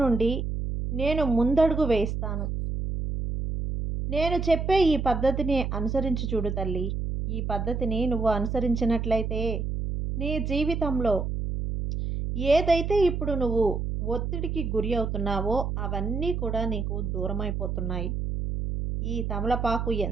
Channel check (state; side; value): noise; right; hum, 2 dB below the sound